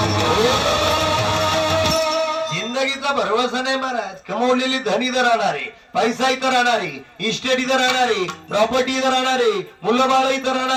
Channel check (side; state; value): both; identical; correlation 1.00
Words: जिंदगीचा भरवसा नाही महाराज. कमवलेली धन इथं राहणारे, पैसा इथं राहणारे, इस्टेट इथं राहणारे, प्रॉपर्टी इथं राहणारे, मुलं बाळ इथं